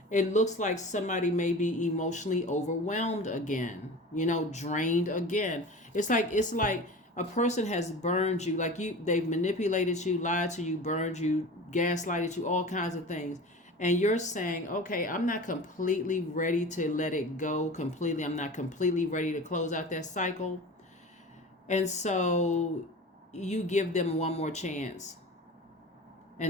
it looks like somebody may be emotionally overwhelmed again, drained again. It's like a person has burned you, they've manipulated you, lied to you, burned you, gaslighted you, all kinds of things. And you're saying, okay, I'm not completely ready to let it go completely. I'm not completely ready to close out that cycle. And so you give them one more chance.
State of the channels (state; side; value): normal; both; correlation 0.35